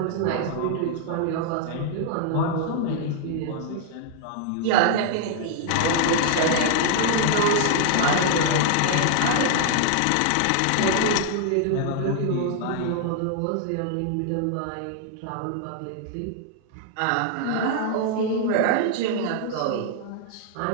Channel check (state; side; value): different; both; correlation 0.00